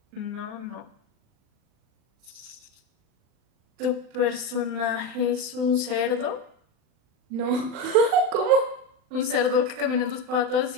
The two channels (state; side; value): late; left; 39 ms